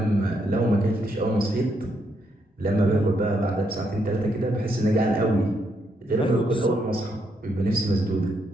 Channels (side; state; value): both; normal; correlation 0.77